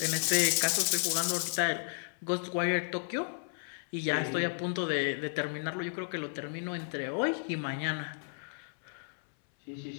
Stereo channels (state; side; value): silent; right; 56 dB below the other